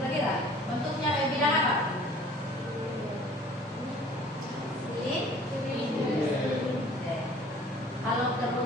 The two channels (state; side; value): normal; both; correlation 0.50